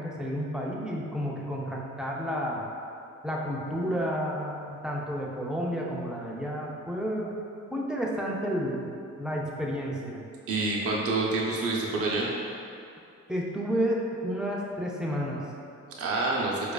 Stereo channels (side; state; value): both; normal; correlation 0.48